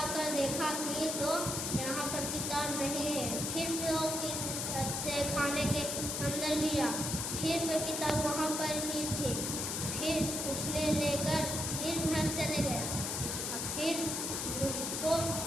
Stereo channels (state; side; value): noise; left; hiss, 2 dB below the sound